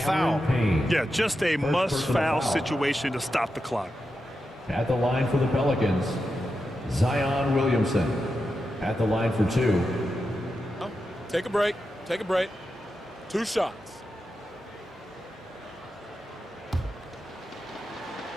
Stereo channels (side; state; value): both; normal; correlation 0.89